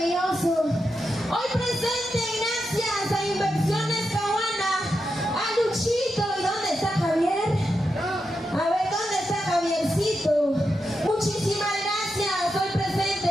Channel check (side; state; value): both; normal; correlation 0.87